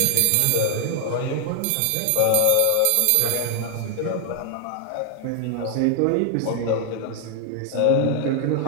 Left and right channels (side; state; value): both; different; correlation 0.00